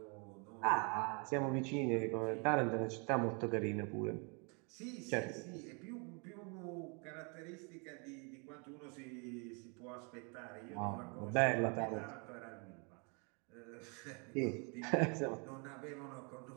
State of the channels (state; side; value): quieter; left; 34.4 dB